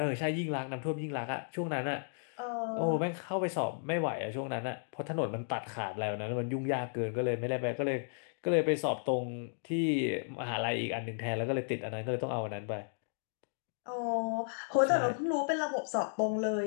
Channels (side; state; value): right; silent; digital silence